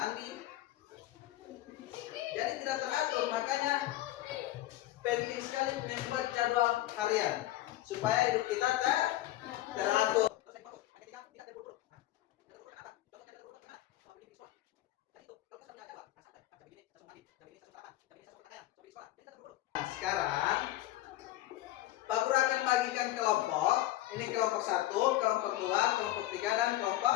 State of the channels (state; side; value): quieter; right; 15.3 dB